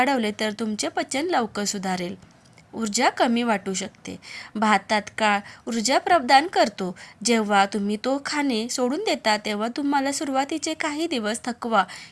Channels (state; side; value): identical; both; correlation 1.00